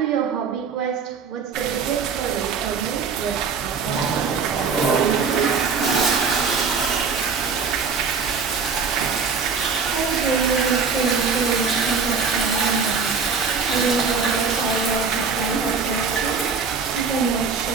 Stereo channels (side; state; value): left; quieter; 5.4 dB